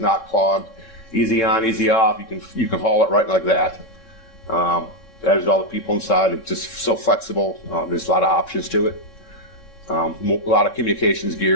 not clogged. Easy on, easy off. You can haul it right like that. That is all the people inside. It's just so flexible. There's a lot of options to it. A lot of communications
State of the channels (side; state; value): right; late; 3.7 ms